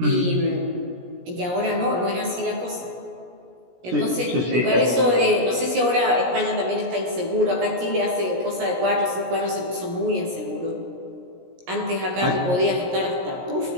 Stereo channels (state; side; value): late; left; 17 ms